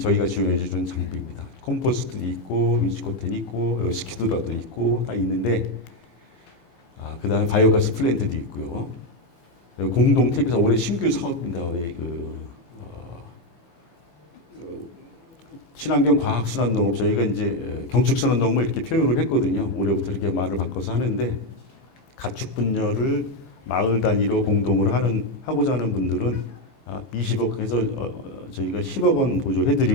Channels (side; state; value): right; late; 15 ms